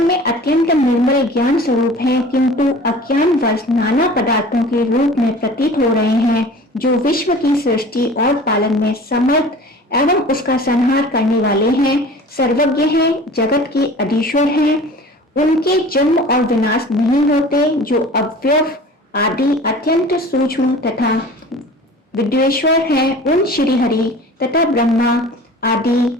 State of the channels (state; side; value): normal; both; correlation 0.42